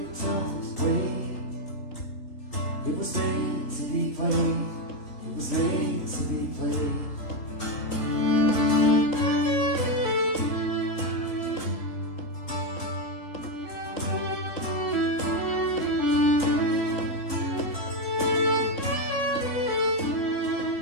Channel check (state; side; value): late; right; 3.8 ms